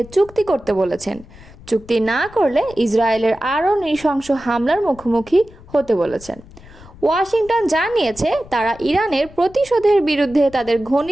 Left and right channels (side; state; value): left; noise; rumble, 21 dB below the sound